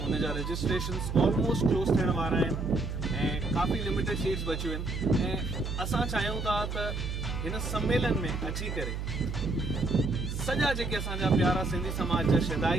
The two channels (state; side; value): noise; right; hum, 4 dB below the sound